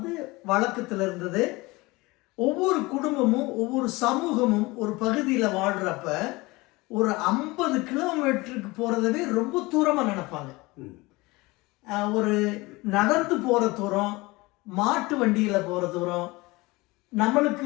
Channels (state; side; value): quieter; right; 22.5 dB